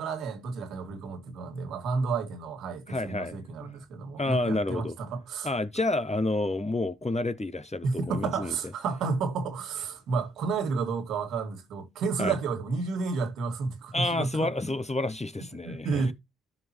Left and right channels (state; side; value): normal; both; correlation 0.70